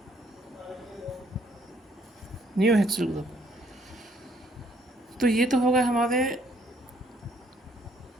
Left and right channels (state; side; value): normal; both; correlation 0.66